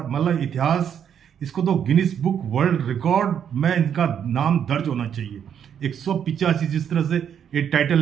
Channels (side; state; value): left; quieter; 8.6 dB